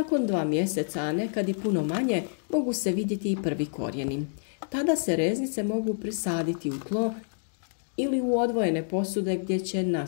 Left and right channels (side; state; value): right; silent; digital silence